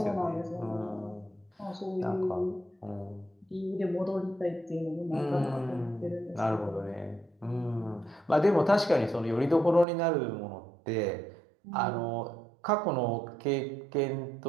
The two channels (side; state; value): left; drops out; at 9.9 s